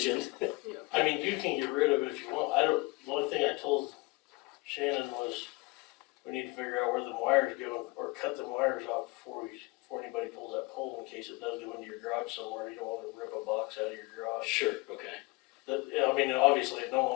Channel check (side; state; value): right; quieter; 24.3 dB